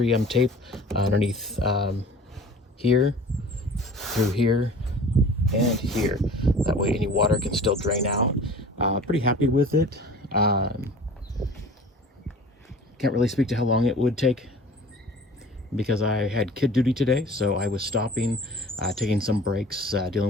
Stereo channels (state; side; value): normal; both; correlation 0.44